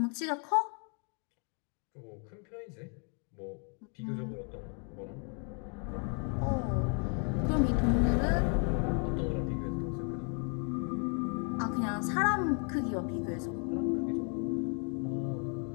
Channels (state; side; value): quieter; right; 39.9 dB